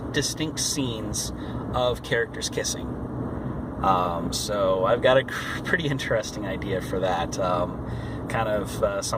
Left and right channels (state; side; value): identical; both; correlation 1.00